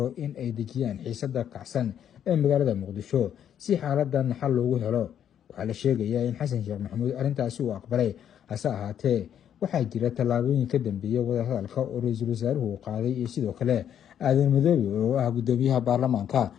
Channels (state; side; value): quieter; right; 9.5 dB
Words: in ay dejiyaan xiisada kacsan ee magaalada muqdisho si xaaladan xal loogu helo. waxaa la sheegayaa in xasan sheekh maxamuud arrintaasi uu aqbalay, hase ahaatee waxaa jira tallaabooyin ka dambeeya wadahadalka oo ra-iisul wasaaruhu qaaday iyo sidoo kale aadan madoobe oo ah gudoomiyaha baarlamaanka,